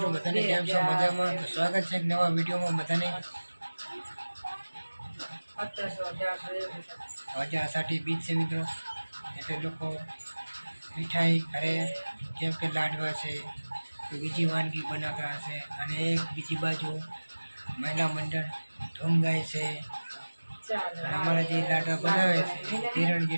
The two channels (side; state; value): both; inverted; correlation -1.00